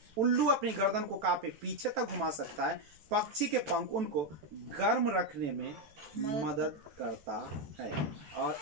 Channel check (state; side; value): late; left; 14 ms